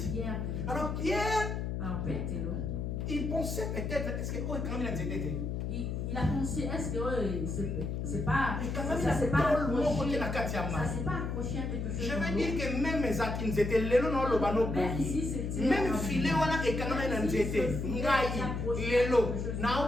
Alors Pierre Il pensait peut-être, est-ce que oh, quand même il a pensé, est-ce que c'est pas, ça s'est pas accroché à quelque chose. Je veux dire que même mes acquis étaient lelo no lo bano même filet wana et quand même nzete ngai lelo na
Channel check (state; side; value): noise; left; hum, 2 dB below the sound